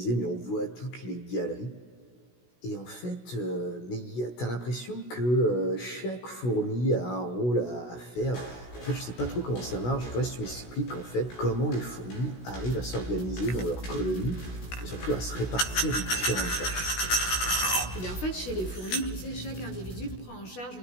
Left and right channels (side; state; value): right; late; 16 ms